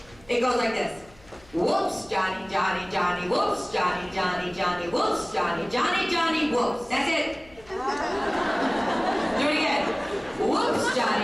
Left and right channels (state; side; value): noise; left; hum, 26 dB below the sound